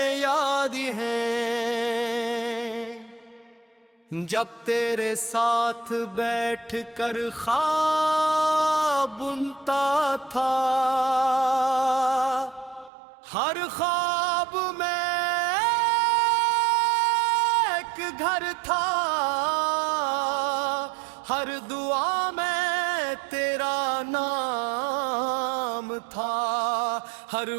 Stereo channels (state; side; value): drops out; left; at 12.9 s